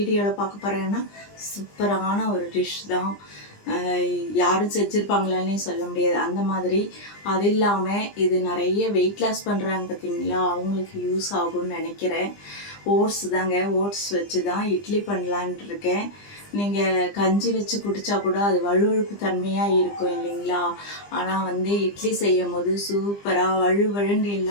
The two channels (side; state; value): right; late; 20 ms